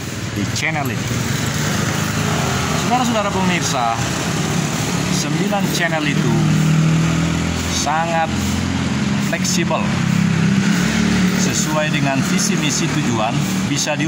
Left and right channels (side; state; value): both; identical; correlation 1.00